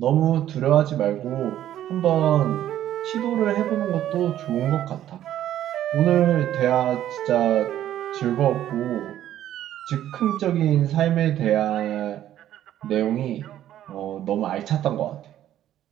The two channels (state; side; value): quieter; left; 12.0 dB